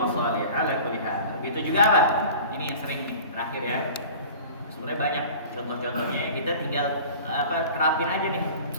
ala kulli hal. Begitu juga apa? Ini yang sering nih, terakhir ya. Sebenarnya banyak contoh-contohnya. Kita tinggal terapin aja nih.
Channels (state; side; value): inverted; both; correlation -0.41